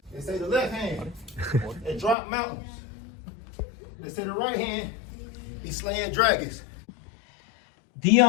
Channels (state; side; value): drops out; right; at 2.1 s